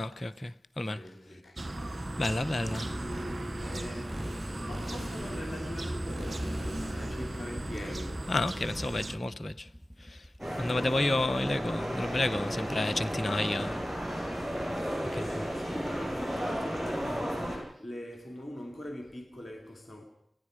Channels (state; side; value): normal; both; correlation 0.95